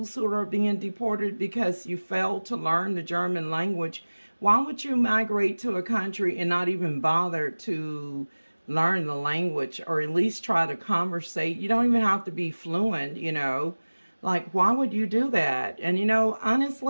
who are being deported because you failed to learn the German language. Why would you migrate to a country and not even bother to learn the language, or at least try to conversate? You don't even have to be fluent, you know. Like, why would you do that? And, you know,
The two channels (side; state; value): both; inverted; correlation -1.00